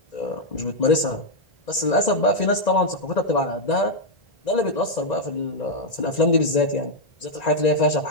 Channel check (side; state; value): right; late; 1.9 ms